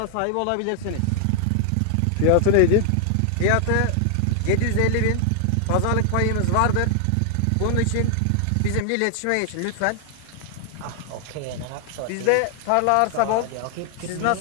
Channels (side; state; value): both; different; correlation 0.00